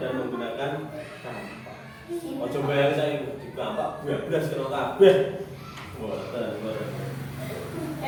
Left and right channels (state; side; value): identical; both; correlation 1.00